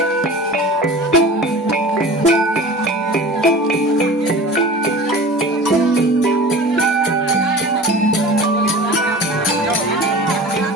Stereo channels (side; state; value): both; normal; correlation 0.37